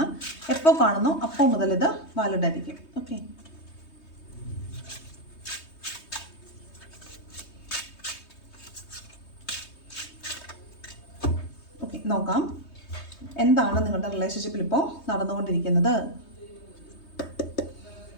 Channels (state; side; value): late; right; 3.2 ms